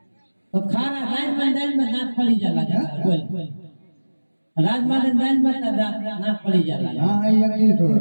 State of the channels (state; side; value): inverted; both; correlation -1.00